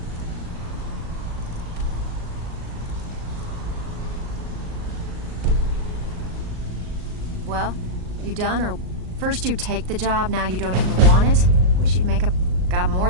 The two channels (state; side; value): late; left; 38 ms